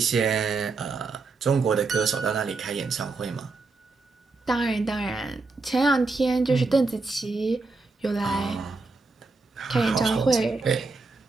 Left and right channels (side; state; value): left; quieter; 3.9 dB